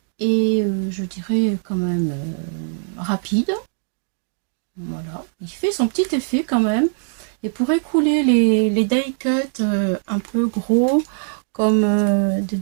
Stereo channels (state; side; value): silent; left; digital silence